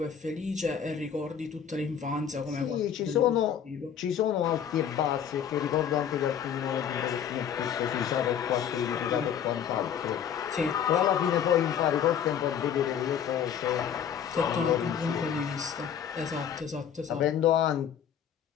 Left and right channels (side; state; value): right; quieter; 8.4 dB